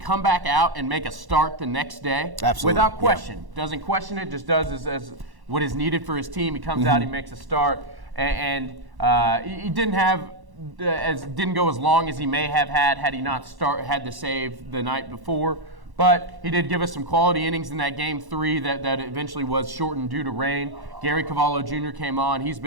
back out and make a start the next day, without question, doesn't question it, just does as what is needed for his team. He comes out, he makes a start, and he didn't have didn't go as long as he may have had he not had the save the night before. But he did give us some quality innings in that Game 3 that eventually was shortened due to rain. Gary Cavallo Jr. came on. He's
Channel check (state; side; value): late; left; 1.1 ms